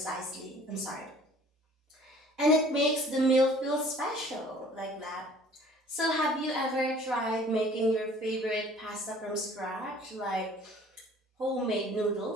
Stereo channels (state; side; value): normal; both; correlation 0.52